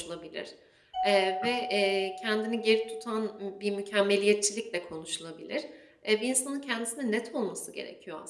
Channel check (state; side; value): identical; both; correlation 1.00